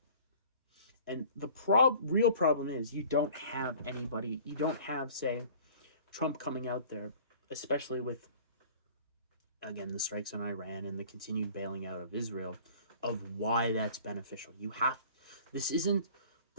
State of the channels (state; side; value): inverted; both; correlation -0.48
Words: And the real problem is you don't have, say, Trump coming out there, especially with again, the strikes on Iran and the continued bailing out of Israel, of why that's beneficial. This isn't